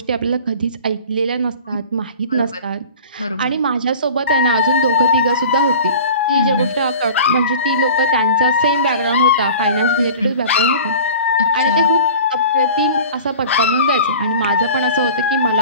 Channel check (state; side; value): inverted; both; correlation -0.40